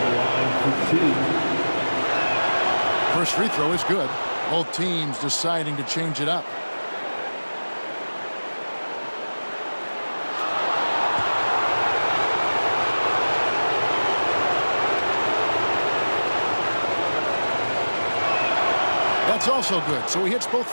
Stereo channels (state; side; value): inverted; both; correlation -1.00